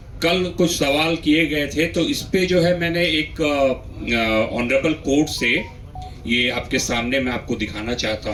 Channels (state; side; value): identical; both; correlation 1.00